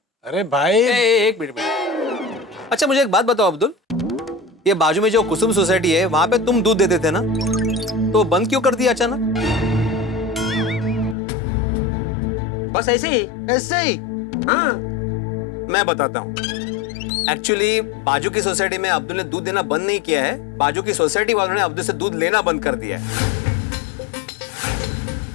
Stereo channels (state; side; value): drops out; right; at 11.2 s